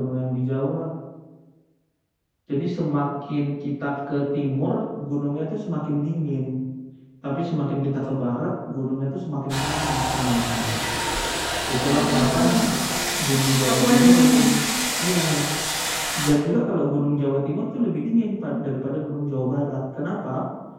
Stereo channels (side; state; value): both; identical; correlation 1.00